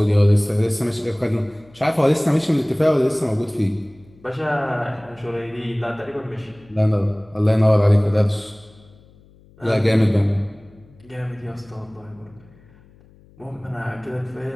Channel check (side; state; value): left; noise; hum, 27 dB below the sound